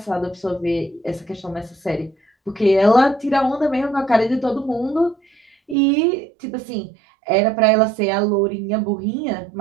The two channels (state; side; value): drops out; left; at 5.8 s